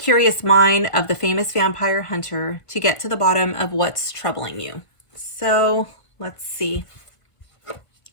mind of the famous vampire hunter to get to the bottom of what's troubling you. So let's see.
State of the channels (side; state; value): right; late; 1.5 ms